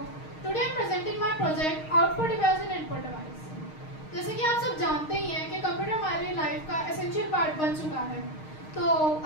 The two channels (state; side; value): late; right; 6.4 ms